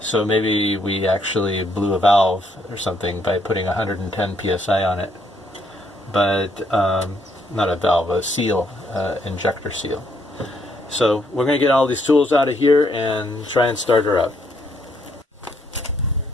So maybe we actually blew a valve or something by putting 110 psi on it. But not a valve, a seal, injector seal. So we're going to get all these tools out of here and try and start her up.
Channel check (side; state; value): both; normal; correlation 0.72